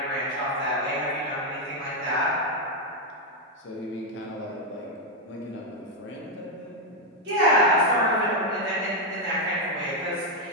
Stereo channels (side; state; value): both; normal; correlation 0.02